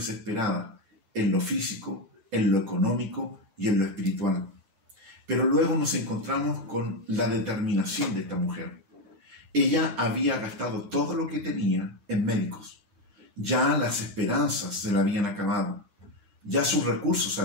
en lo físico, en lo económico y en lo espiritual. Pero luego nos encontramos con la determinación de esta mujer. Ella había gastado todo lo que tenía en médicos. Ya las esperanzas se le habían acabado. Ya sus recursos se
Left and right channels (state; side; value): late; left; 9.0 ms